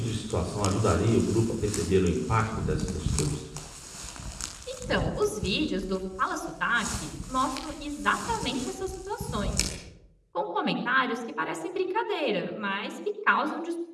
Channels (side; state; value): both; identical; correlation 1.00